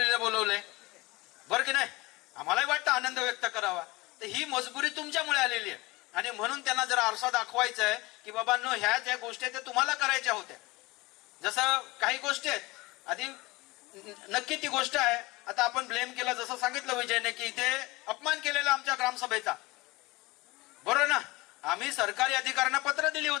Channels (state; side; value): quieter; right; 22.4 dB